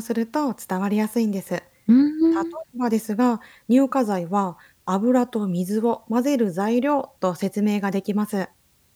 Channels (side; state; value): both; identical; correlation 1.00